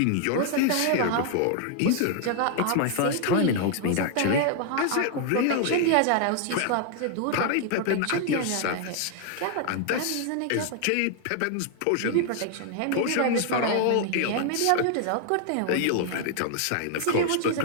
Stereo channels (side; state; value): both; different; correlation 0.00